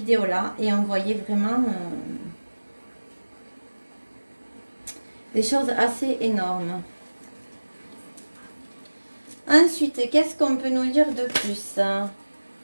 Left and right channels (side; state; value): both; inverted; correlation -1.00